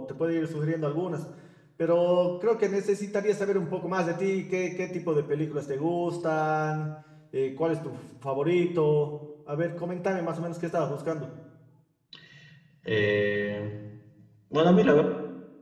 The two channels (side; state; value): both; identical; correlation 1.00